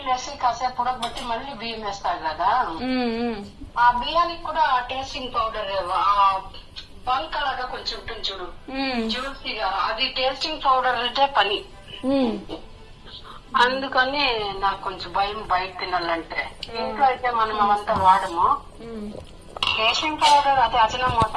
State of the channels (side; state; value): both; identical; correlation 1.00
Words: వేసి కాసేపు ఉడకబెట్టి మళ్ళీ బియ్యం వేస్తారు కదా, ఆ బియ్యానికి కూడా టేస్టింగ్ పౌడర్ బంక్ లాగా కొంచెం ఉంటుంది చూడు, జ్యూసీగా, అది టేస్టింగ్ పౌడర్ అంటే పని. అందుకని నాకు కొంచెం భయం బయట తినాలంటే. ఇంట్లో అయితే మనం అవంతా వాడము. టేస్టింగ్ పౌడర్ అది అజనమోట